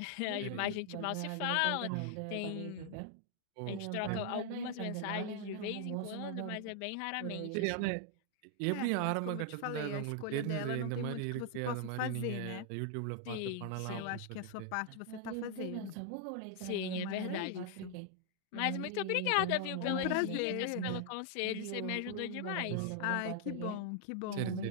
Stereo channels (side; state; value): both; different; correlation 0.00